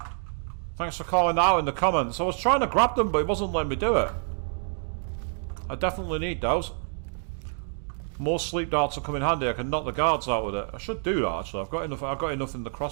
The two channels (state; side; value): silent; left; 60 dB below the other